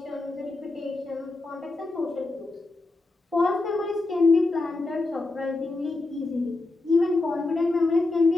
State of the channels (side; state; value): right; quieter; 3.2 dB